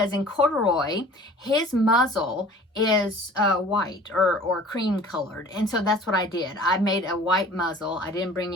in Corduroy, his muzzle is white or cream colored. And so that's what I did. I made a white muzzle. I didn't bring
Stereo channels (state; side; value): normal; both; correlation 0.46